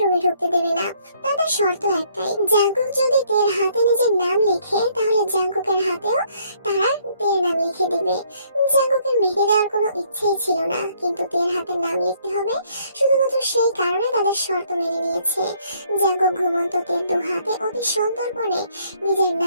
রুমে ঢুকতে দেবে না। তাদের শর্ত একটাই, জাঙ্কুক যদি তের হাতে নিজের নাম লেখে, তাহলে জাঙ্কুকের হাতেও তারা তের নাম লিখে দিবে। জাঙ্কুকের মেহেদি দেওয়ার কোনো ইচ্ছেই ছিল না, কিন্তু তের হাতে নাম লিখতে হবে শুধুমাত্র সেই কারণে তাদের শর্ত মেনে নিয়েছে। জাঙ্কুক ঘুমন্ত তের দু হাতে অতি সন্তর্পণে নিজের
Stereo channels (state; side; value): inverted; both; correlation -0.66